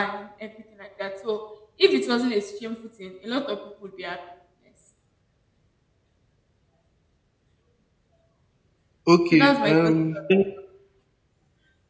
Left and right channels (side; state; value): both; identical; correlation 1.00